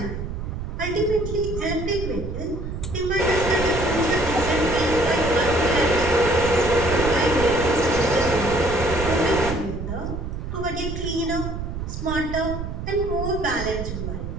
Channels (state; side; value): noise; right; rumble, 6 dB below the sound